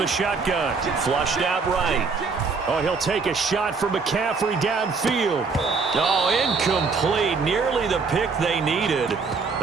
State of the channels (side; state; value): left; quieter; 4.7 dB